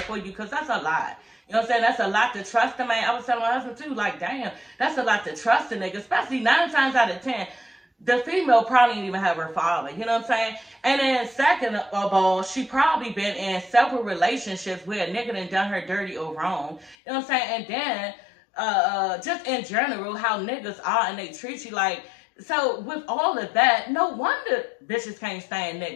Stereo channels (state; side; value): drops out; right; at 16.9 s